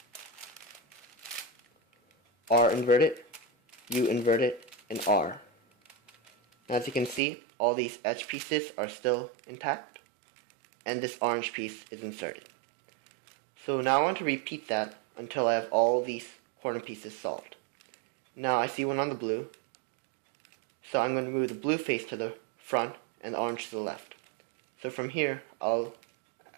R inverted, U inverted, and R. As you can see, all these edge pieces are still intact, and this orange piece is inserted. So now I want to repeat that until I have all these corner pieces solved. Now I see one on the blue, so I'm going to move the blue face to the front and the orange to the left. So from here,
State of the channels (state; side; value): drops out; left; at 7.2 s